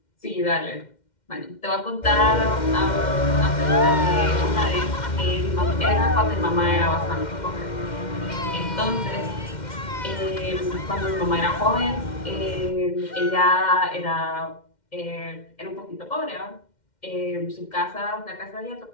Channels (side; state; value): right; late; 2.1 ms